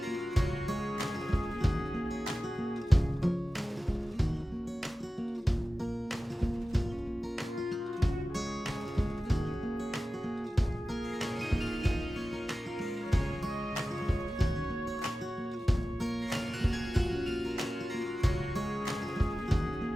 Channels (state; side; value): normal; both; correlation 0.95